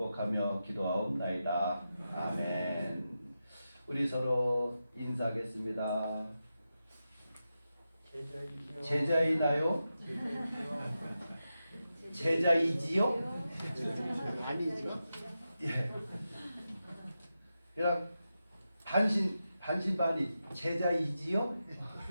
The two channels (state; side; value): inverted; both; correlation -0.90